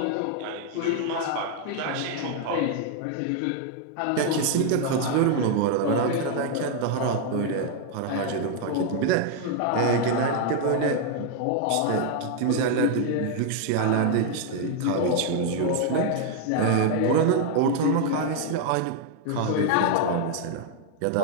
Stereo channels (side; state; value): both; different; correlation 0.00